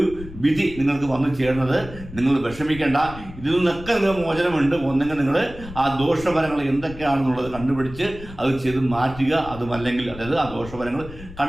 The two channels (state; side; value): noise; left; rumble, 15 dB below the sound